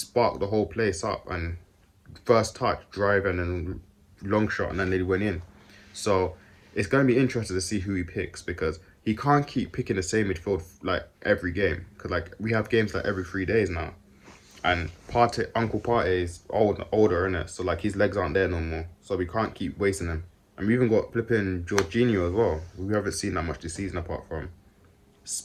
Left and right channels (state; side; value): identical; both; correlation 1.00